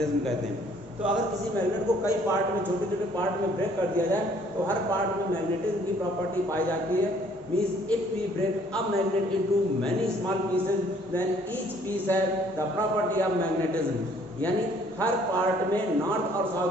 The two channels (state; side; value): normal; both; correlation 0.60